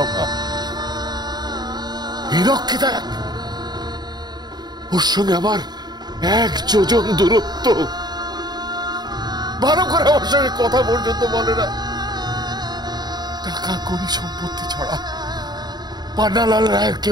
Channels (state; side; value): late; left; 0.20 ms